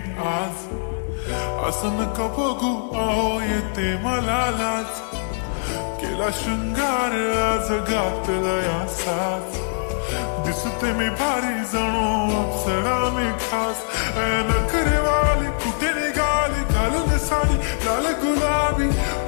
आज, असं नका बघू अहो येते मला लाज, केला शृंगार आज घातला साज, दिसते मी भारी जणू अप्सरा मी खास, नखरेवाली कुठे निघाली घालून साडी लाल गुलाबी,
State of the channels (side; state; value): right; silent; digital silence